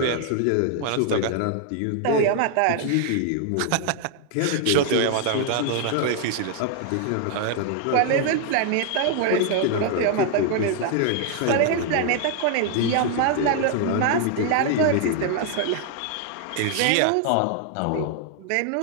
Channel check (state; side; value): different; both; correlation 0.00